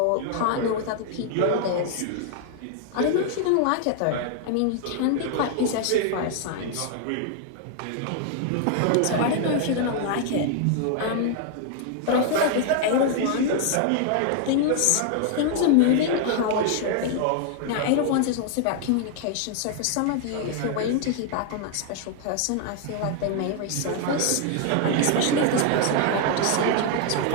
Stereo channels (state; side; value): different; both; correlation 0.00